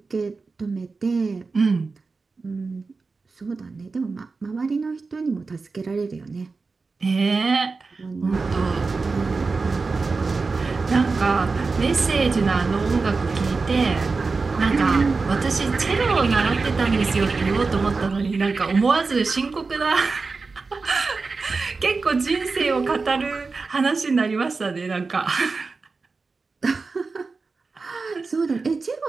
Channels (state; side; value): quieter; left; 4.2 dB